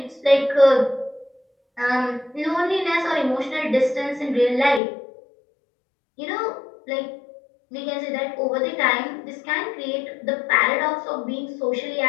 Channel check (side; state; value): right; drops out; at 4.8 s